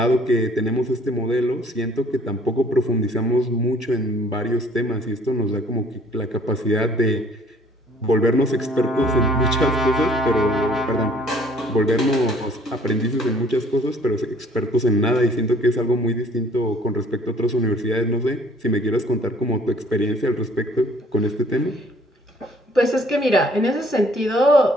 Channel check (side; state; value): both; normal; correlation 0.57